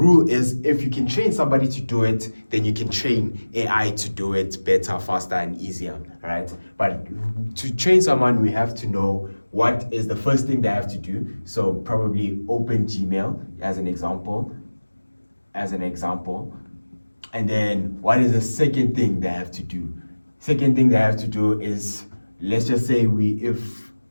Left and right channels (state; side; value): inverted; both; correlation -1.00